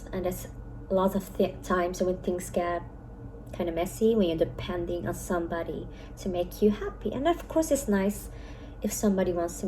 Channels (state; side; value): identical; both; correlation 1.00